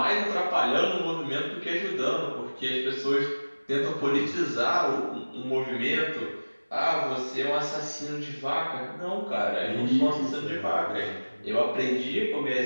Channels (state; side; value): inverted; both; correlation -1.00